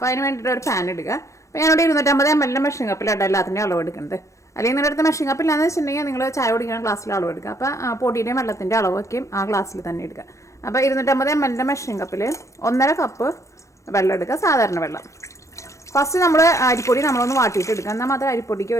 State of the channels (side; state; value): right; late; 0.15 ms